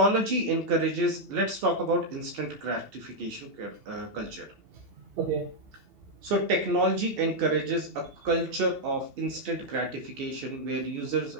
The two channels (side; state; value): left; late; 2.7 ms